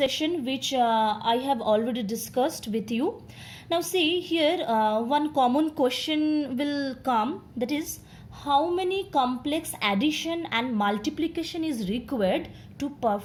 which I have already discussed with you. Now see here one common question will come, that is how many complex addition and multiplication is required to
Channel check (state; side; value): identical; both; correlation 1.00